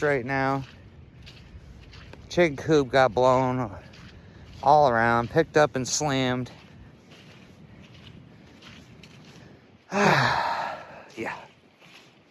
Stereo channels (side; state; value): both; identical; correlation 1.00